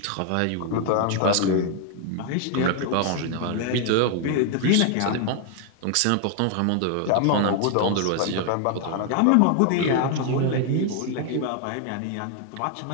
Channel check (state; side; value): different; both; correlation 0.00